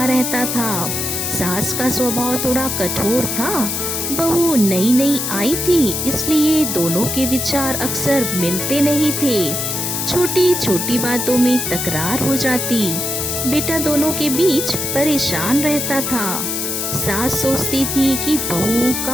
रहता था। सास का स्वभाव थोड़ा कठोर था। बहू नई नई आई थी, इसलिए दोनों के विचार अक्सर मिलते नहीं थे। छोटी छोटी बातों में तकरार हो जाती। बेटा दोनों के बीच परेशान रहता था। सास सोचती थी कि बहू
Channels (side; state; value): left; noise; hiss, 2 dB below the sound